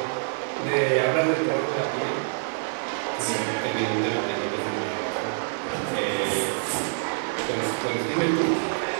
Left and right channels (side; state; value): left; silent; digital silence